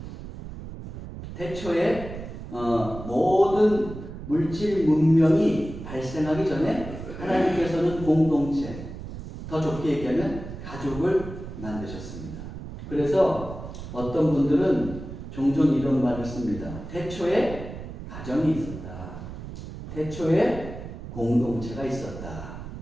태초에 모든 물질 문명이 발생하기 전에 하나님께서는 공동체, 더 좁게 얘기하면 가족을 만드셨습니다. 그래서 어떤 분들은 종종 이런 말을 씁니다. 태초에 가정이 있었다. 태초에 공동체가 있었다.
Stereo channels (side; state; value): right; noise; rumble, 10 dB below the sound